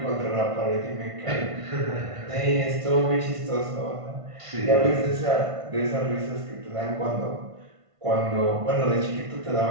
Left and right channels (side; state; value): left; late; 1.5 ms